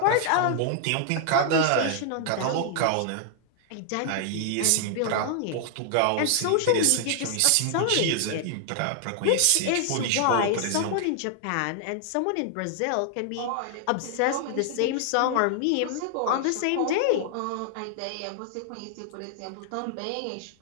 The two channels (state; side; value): different; both; correlation -0.01